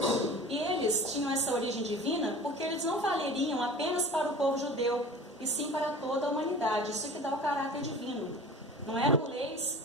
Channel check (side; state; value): both; normal; correlation 0.39